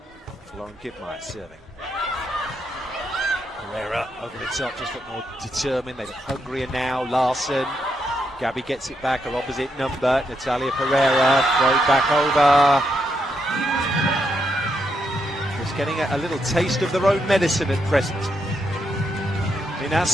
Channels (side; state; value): both; normal; correlation 0.80